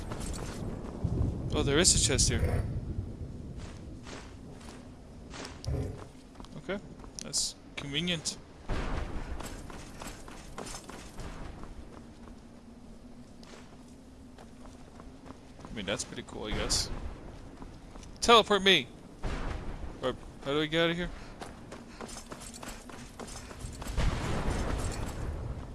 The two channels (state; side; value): identical; both; correlation 1.00